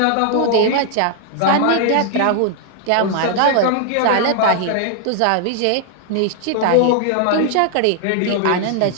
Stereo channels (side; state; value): both; different; correlation 0.00